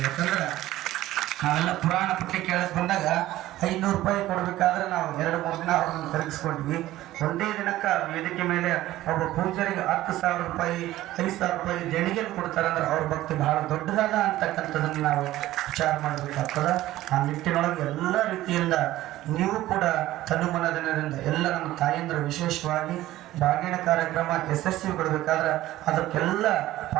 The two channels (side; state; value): left; quieter; 15.4 dB